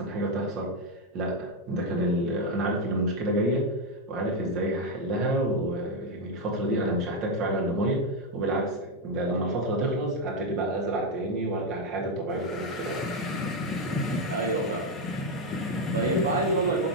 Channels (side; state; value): both; normal; correlation 0.04